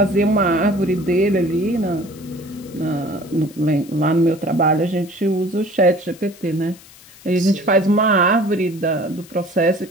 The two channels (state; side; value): noise; left; hiss, 23 dB below the sound